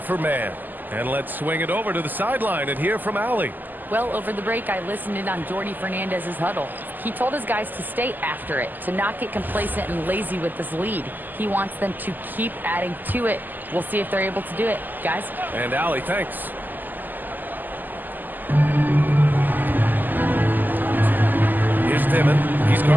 Mann. And let's swing it over to the sideline and hear from Allie. Well, over the break, I listened in on Jordy Fernandez's huddle. He told his guys to stay after it, to not get complacent and lazy with this lead. He wants them to keep adding to it. We'll see if they're able to do it. Guys? And Allie, thanks. Here's Dimon. He's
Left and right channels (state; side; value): late; left; 0.087 ms